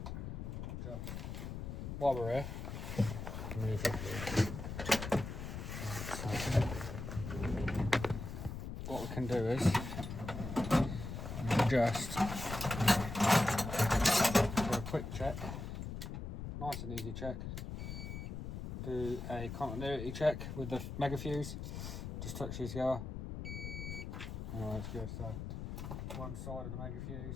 just, while we're here, move it. What we can do is just do a quick check, nice and easy check. Do a continuity check with the mega fuse. Just touch these together. Oh, that's good. So one side of the mega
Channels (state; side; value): noise; left; rumble, 6 dB below the sound